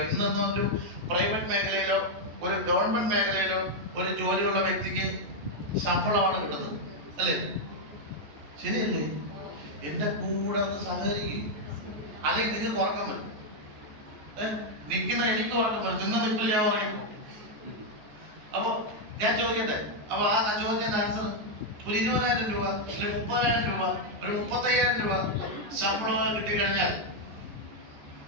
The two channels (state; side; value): late; left; 14 ms